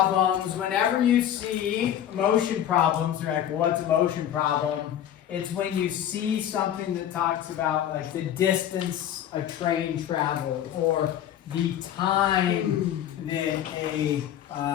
Whenever you see motion problems, you're like, well, what's a motion problem? It's when you see something that talks about like the distance a train traveled or the time that a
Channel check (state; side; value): quieter; right; 10.7 dB